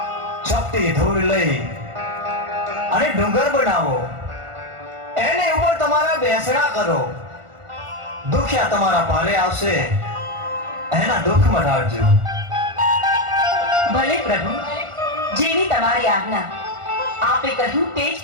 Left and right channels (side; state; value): left; late; 1.5 ms